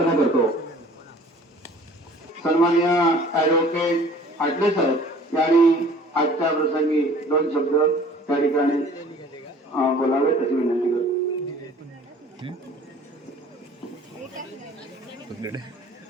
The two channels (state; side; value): normal; both; correlation 0.51